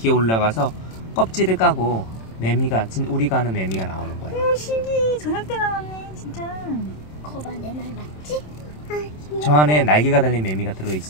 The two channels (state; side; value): late; right; 27 ms